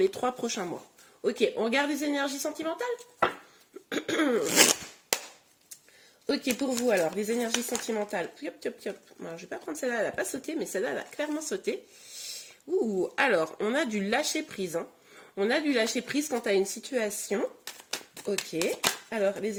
3 prochains mois. Ok, on regarde les énergies sentimentales. Ok, pour vous alors, les énergies sentimentales. Yop, yop, yop. Alors, je vais pas prendre celle-là, elle n'a pas sauté, mais celle-là, elle a clairement sauté. Ouh, alors, on a du lâcher prise. Hein. On a du lâcher prise quant à une situation. Ok, alors, les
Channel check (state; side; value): identical; both; correlation 1.00